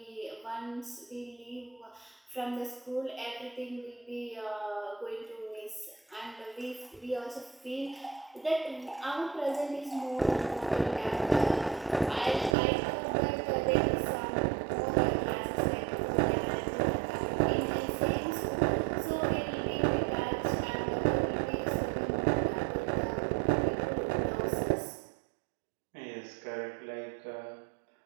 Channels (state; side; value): drops out; left; at 12.6 s